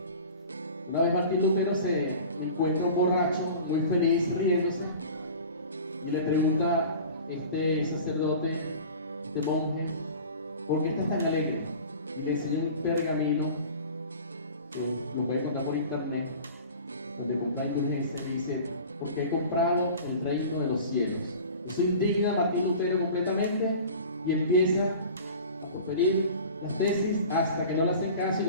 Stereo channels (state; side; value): inverted; both; correlation -0.40